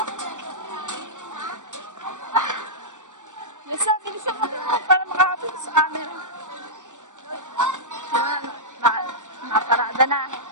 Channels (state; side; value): late; left; 0.86 ms